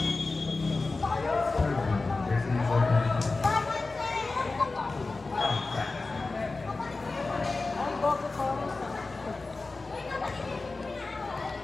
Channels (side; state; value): right; quieter; 3.6 dB